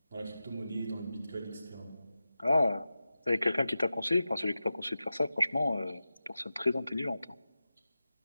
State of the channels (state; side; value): inverted; both; correlation -0.94